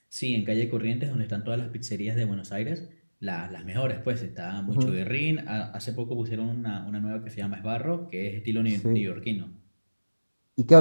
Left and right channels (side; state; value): both; inverted; correlation -1.00